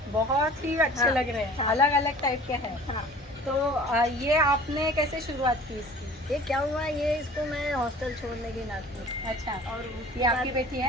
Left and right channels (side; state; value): both; normal; correlation 0.45